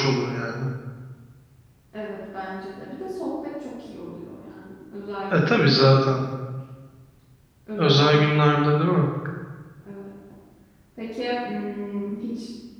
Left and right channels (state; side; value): identical; both; correlation 1.00